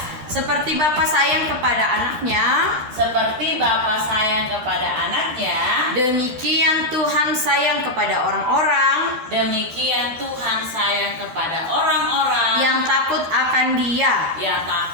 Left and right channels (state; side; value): late; left; 12 ms